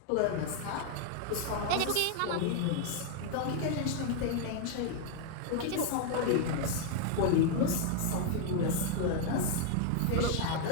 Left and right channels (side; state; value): both; different; correlation 0.00